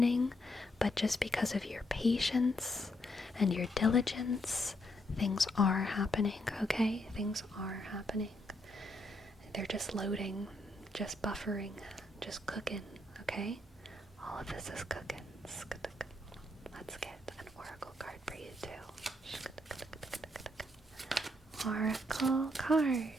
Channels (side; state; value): both; normal; correlation 0.76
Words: but just because of your patience and your diligence, things are happening, okay? Things are happening. They're just loading, just buffering, just cooking, okay? All of this is cooking. Let's get an oracle card for you too. Oracle card